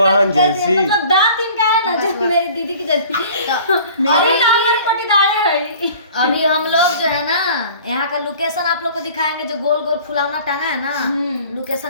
जैसी, मतलब दांत इनका है ना जो मेरी दीदी की जैसी। अरे ना हमारे पटीदारे है। अभी हम लोग जो है ना यहाँ का लोकेशन आप लोग को दिखाएंगे, जो गोल गोल फुलावना टांगा है ना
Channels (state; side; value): inverted; both; correlation -0.47